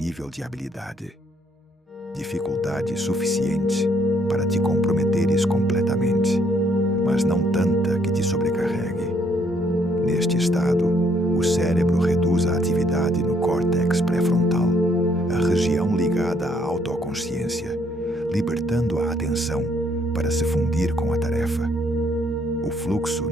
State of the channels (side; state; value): both; normal; correlation 0.68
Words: de habilidade. Dificuldade suficiente para te comprometeres completamente, mas não tanta que te sobrecarregue. Neste estado, o cérebro reduz a atividade no córtex pré-frontal, a região ligada à autoconsciência, libertando a atenção para se fundir com a tarefa. O fluxo